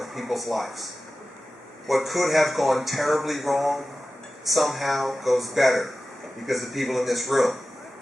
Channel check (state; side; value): normal; both; correlation 0.95